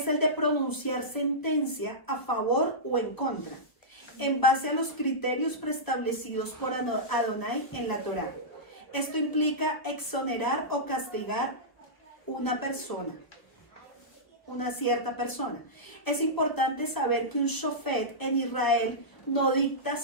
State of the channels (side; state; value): right; late; 1.3 ms